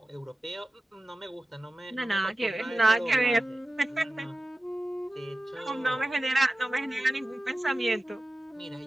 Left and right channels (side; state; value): both; normal; correlation 0.95